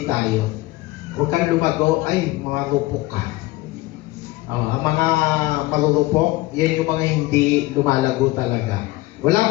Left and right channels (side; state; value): right; quieter; 18.9 dB